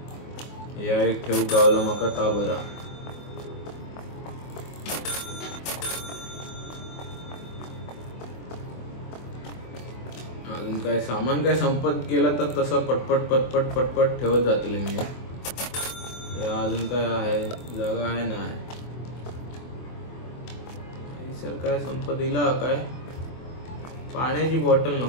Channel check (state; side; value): late; right; 24 ms